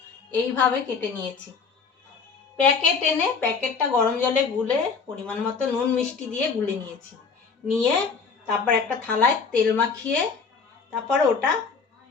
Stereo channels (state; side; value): quieter; right; 5.2 dB